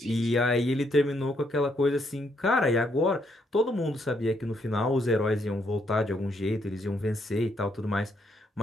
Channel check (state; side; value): normal; both; correlation 0.74